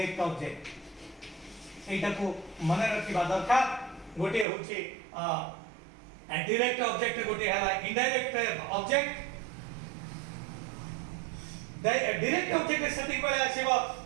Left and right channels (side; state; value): left; drops out; at 4.5 s